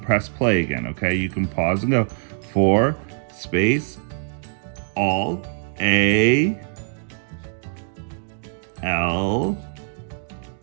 play again, okay? You can pause and go. For, space, all, A, L,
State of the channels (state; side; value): silent; left; digital silence